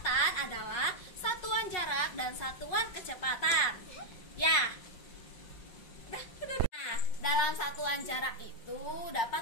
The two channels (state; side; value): late; right; 5.5 ms